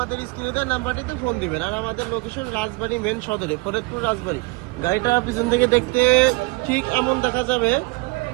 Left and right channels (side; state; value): left; quieter; 25.4 dB